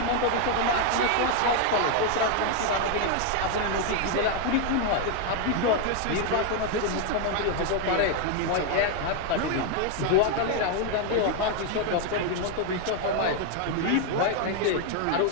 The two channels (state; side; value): different; both; correlation 0.00